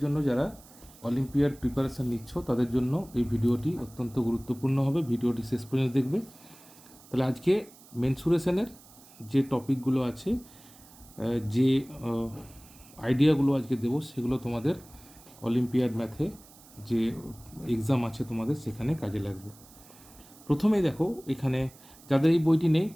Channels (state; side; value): noise; right; hiss, 23 dB below the sound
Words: জন্য যারা অলিম্পিয়াড প্রিপারেশন নিচ্ছ তাদের জন্য এই ভিডিওটি অত্যন্ত গুরুত্বপূর্ণ হবে। ভিডিওটি শেষ পর্যন্ত দেখবে। তাহলে আজকে মেনসুরেশনের যে টপিকগুলো আছে, যে আইডিয়াগুলো আজকে দেবো সেগুলো তোমাদের অলিম্পিয়াড ম্যাথে যে এক্সাম আছে তোমাদের সেখানে কাজে লাগবে। প্রথমেই দেখো, এখানে যাদের এই বইটি নেই